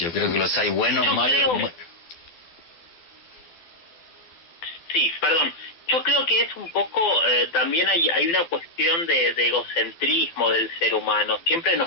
creo que los hay buenos, malos... Sí, perdón. Yo creo que es un poco, también hay una cuestión de egocentrismo del ser humano. Siempre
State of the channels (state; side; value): late; right; 12 ms